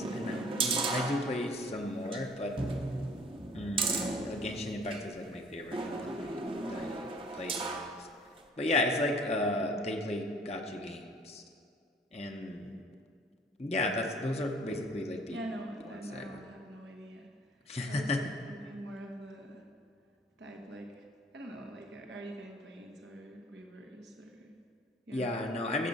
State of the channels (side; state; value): both; normal; correlation 0.53